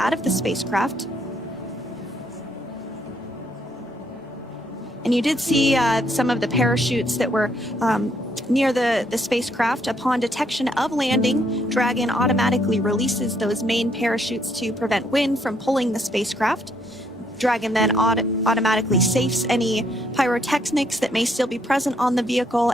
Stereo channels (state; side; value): normal; both; correlation 0.71